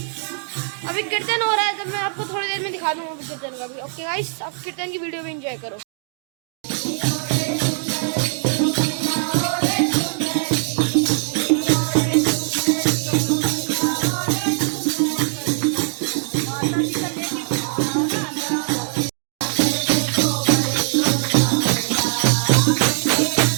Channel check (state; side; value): silent; left; 58 dB below the other